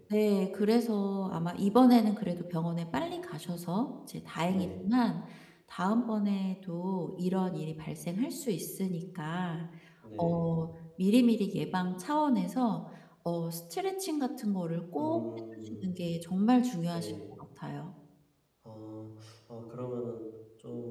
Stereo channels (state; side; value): identical; both; correlation 1.00